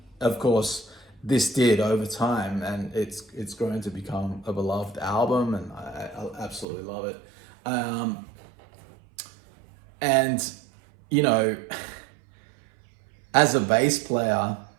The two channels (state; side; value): drops out; left; at 6.7 s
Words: of course, this did over time, and it's going to become a beloved album, and I absolutely love it. And as a bass player,